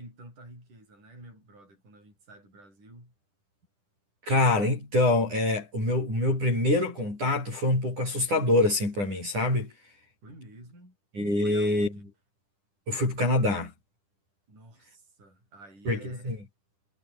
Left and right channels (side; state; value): left; late; 10 ms